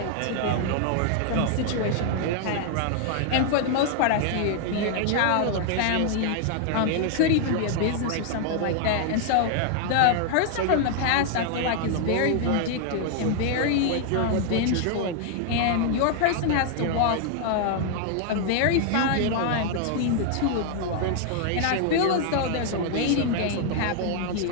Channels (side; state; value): both; different; correlation 0.00